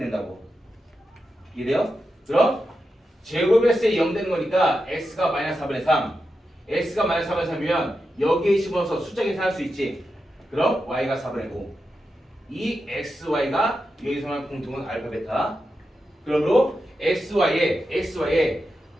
이해돼요? 그럼 제곱했을 때 0 되는 거니까 x가 마이너스 4분의 3 x가 마이너스 4분의 3이면 여기에 집어넣어서 숫자 계산할 수 있지. 그럼 y가 4분의 5 이 xy가 여기서만 공통은 알파 베타. 그러므로 xy에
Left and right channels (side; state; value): both; normal; correlation 0.89